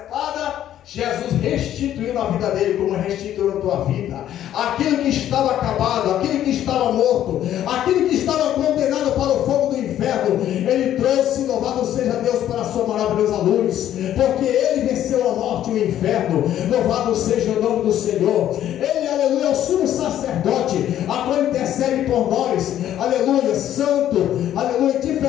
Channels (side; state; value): right; quieter; 11.5 dB